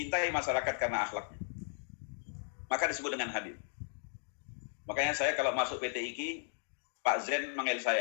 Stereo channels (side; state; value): right; silent; digital silence